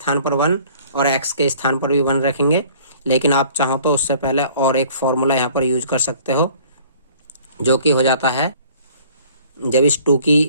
पर 1 और x के स्थान पर भी 1 रखेंगे, लेकिन आप चाहो तो उससे पहले और एक फॉर्मूला यहाँ पर यूज कर सकते हो जो कि हो जाता है, जब इस 2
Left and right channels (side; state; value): both; inverted; correlation -0.52